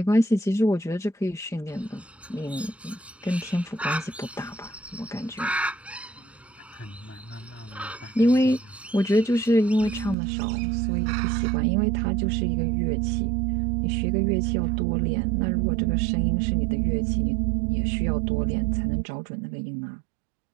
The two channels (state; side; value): drops out; left; at 10.2 s